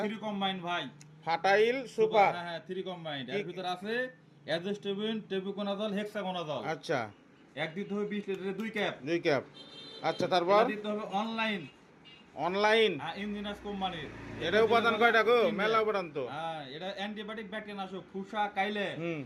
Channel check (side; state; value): both; identical; correlation 1.00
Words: 3 কম্বাইন ভাই। ফাটাইল সুপার। হ্যাঁ হ্যাঁ 3 কম্বাইন। এর ভিতর আছে অ্যাজোস্টেবিন, টেবুকোনাজল, হেক্সাগোনাজল। আচ্ছা, এক দিতে হবে 20 লিটারের 2 ক্যাপ। 2 ক্যাপ। আচ্ছা, তারপর এটা দিতে হবে অনলাইন। অনলাইন। ইঞ্জিনাস কোম্পানির। এটা উপাদান কয়টা গো? মেলা উপাদান তো। হ্যাঁ এটা অ্যান্টিবায়োটিক ব্যাকটেরিয়া নাশক, ফুসা কাইলে হুম।